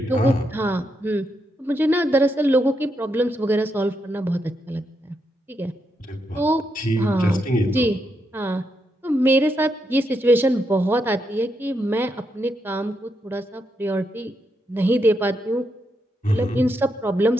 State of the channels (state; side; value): normal; both; correlation 0.82